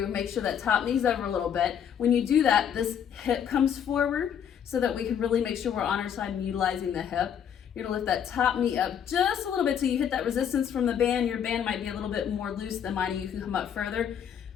make sure that top knee's over a little bit. When you do that, this hip comes forward so that we can really make sure we're on our side and utilizing the hip. You're gonna lift that top knee up just a little bit till you hit that resistance from the band. Your band might be a little bit more loose than mine, and you can come up further.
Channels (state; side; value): quieter; right; 8.5 dB